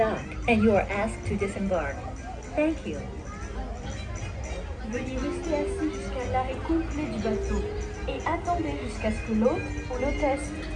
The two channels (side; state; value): both; identical; correlation 1.00